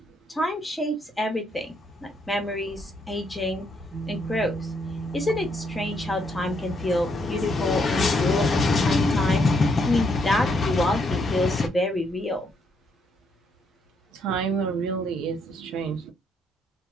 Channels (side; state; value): both; normal; correlation 0.74